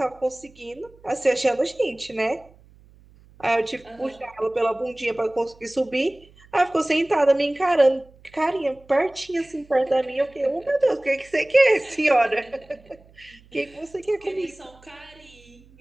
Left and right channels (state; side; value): noise; right; hum, 27 dB below the sound